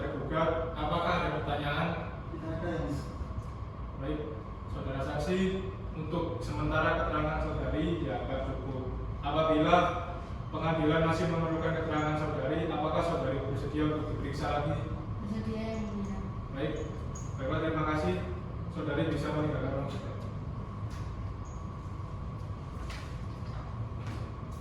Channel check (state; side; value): identical; both; correlation 1.00